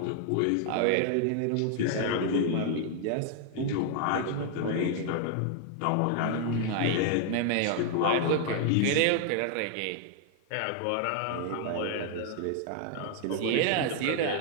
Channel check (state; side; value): different; both; correlation 0.00